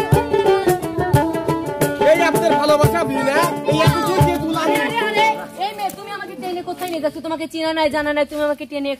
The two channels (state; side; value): identical; both; correlation 1.00